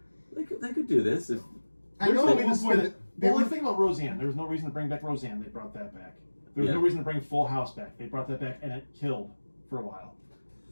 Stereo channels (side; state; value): both; inverted; correlation -1.00